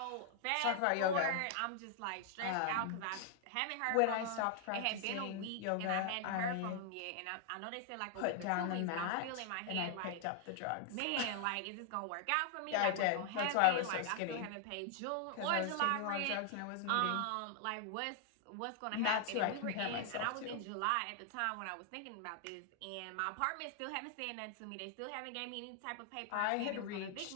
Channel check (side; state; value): both; different; correlation 0.00